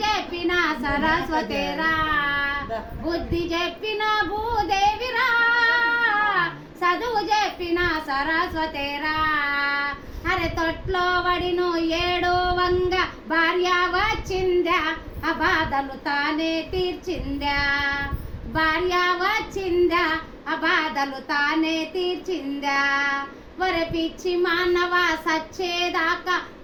చెప్పిన సరస్వతిరా. బుద్ధి చెప్పిన భూదేవిరా, చదువు చెప్పిన సరస్వతిరా. అరే తొట్లో వడిను ఏడో వంగ భార్య వచ్చిందా, ఆ బాధలు తానే తీర్చిందా. భార్య వచ్చిందా, ఆ బాధలు తానే తీర్చిందా. ఒరే పిచ్చి మానవ సచ్చేదాకా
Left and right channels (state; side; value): identical; both; correlation 1.00